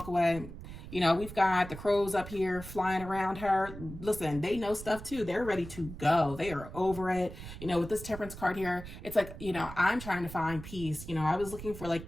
away. You know, we've got the crows up here flying around her. Listen, they know stuff too. They're ready to go. They are over it. You know, with this Temperance card here, it's like, you know, I'm trying to find peace. You know, I was looking for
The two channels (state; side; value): noise; right; rumble, 12 dB below the sound